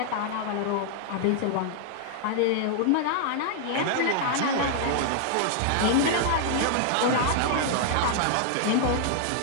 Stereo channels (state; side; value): different; both; correlation -0.01